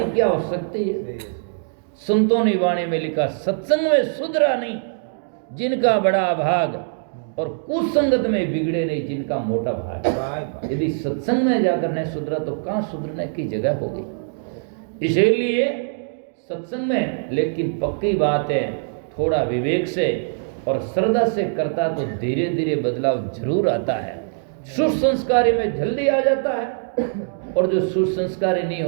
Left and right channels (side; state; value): left; silent; digital silence